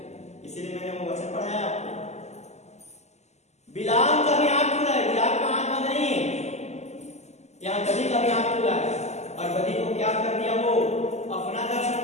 इसीलिए मैंने वो वचन पढ़ाया आपको। बिलाम का भी आंख खुला है, बिलाम का आंख बंद नहीं है। यहाँ गदही का भी आंख खुला है, और गदही को क्या कर दिया? वो अपना दर्शन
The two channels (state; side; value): late; right; 0.33 ms